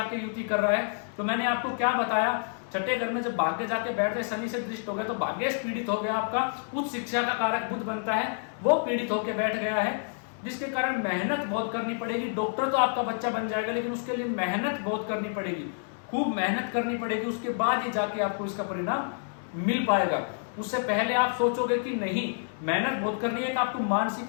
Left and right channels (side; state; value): right; silent; 59 dB below the other